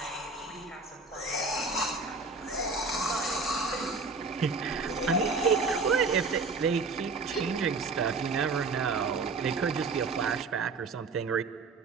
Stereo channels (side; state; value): left; quieter; 4.1 dB